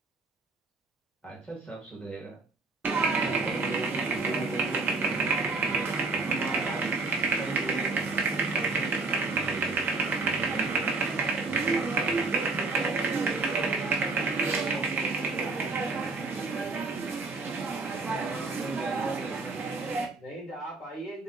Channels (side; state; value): left; quieter; 3.6 dB